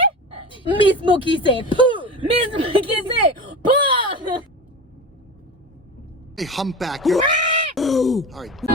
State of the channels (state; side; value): normal; both; correlation 0.29